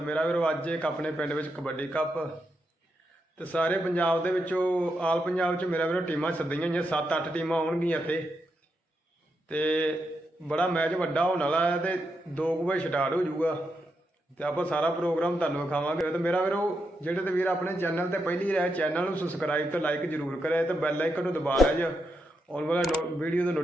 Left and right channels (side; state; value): both; normal; correlation 0.84